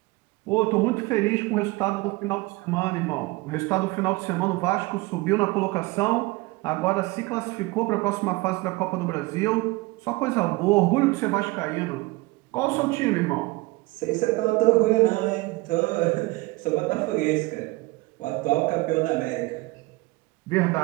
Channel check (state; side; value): quieter; left; 22.4 dB